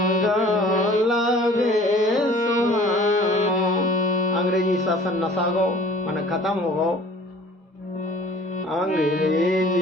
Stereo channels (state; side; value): normal; both; correlation 0.49